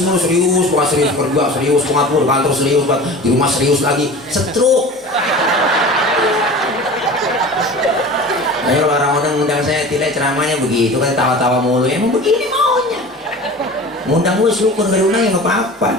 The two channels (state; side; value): normal; both; correlation 0.37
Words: mulu, serius, bukan serius kerja, serius pengatur kantor, serius di rumah, serius lagi, setruk. Ayo orang undang saya tidak ceramahnya begitu kan, tawa-tawa mulu, emang begini maunya. Ngundang gue syukur, gak diundang ya nggak apa-apa.